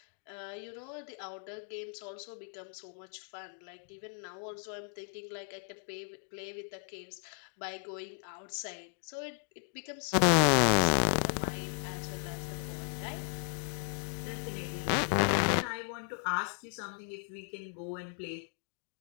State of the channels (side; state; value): right; silent; 54 dB below the other